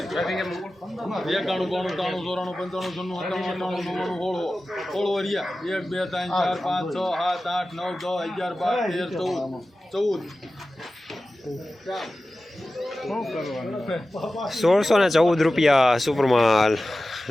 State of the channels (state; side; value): normal; both; correlation 0.95